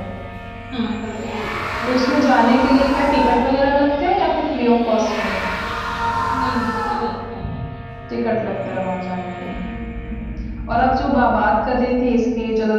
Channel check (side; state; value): both; identical; correlation 1.00